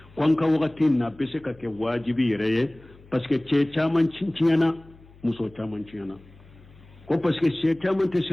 ko an ka wagati na bɛ se ka kɛ wajibi yɛrɛ ye parce que cɛ caman tiɲɛna muso caman tiɲɛna ko parce que cɛ caman tɛ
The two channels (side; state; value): left; noise; hum, 25 dB below the sound